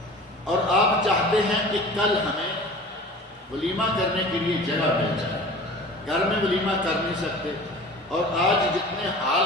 اور آپ چاہتے ہیں کہ کل ہمیں ولیمہ کرنے کے لیے جگہ مل جائے، گھر میں ولیمہ کر نہیں سکتے، اور آج جتنے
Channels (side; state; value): both; normal; correlation 0.40